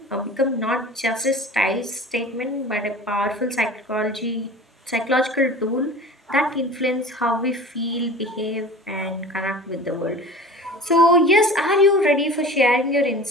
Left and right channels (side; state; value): both; normal; correlation 0.39